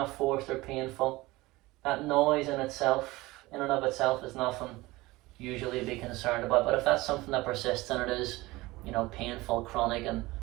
forced or painful. That noise in and of itself is nothing usually to be concerned about. But if that's something that persists and it is, painful, chronic and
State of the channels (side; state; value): left; quieter; 20.3 dB